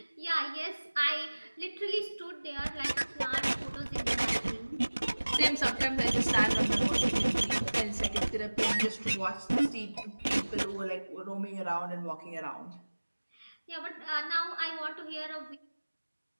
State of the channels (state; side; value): inverted; both; correlation -1.00